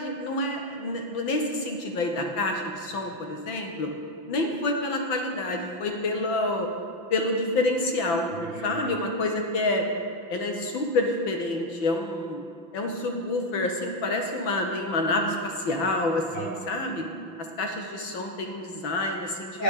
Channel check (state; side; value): late; right; 5.9 ms